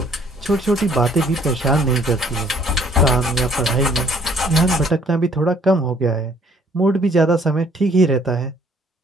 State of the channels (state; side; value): normal; both; correlation 0.61